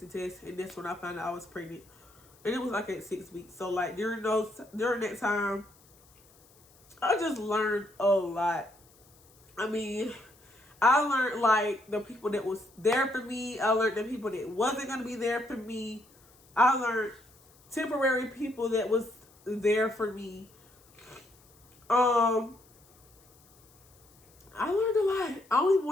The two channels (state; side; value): noise; left; hiss, 29 dB below the sound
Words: test. And that's when I found out I was pregnant. And it was like at 6 weeks. So, like, during that time, I just learned a lot. I mean, I learned, like, the people that was there for me. I learned the people that wasn't going to be there for me. I learned temporary people that was there for me. I learned a lot. I don't even